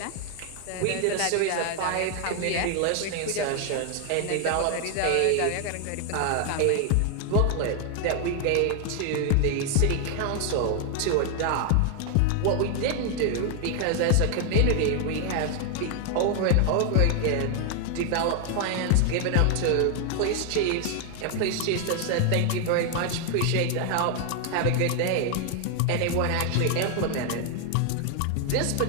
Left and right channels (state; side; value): different; both; correlation 0.00